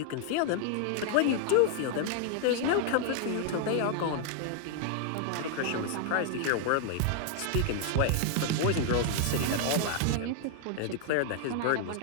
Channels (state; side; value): different; both; correlation 0.00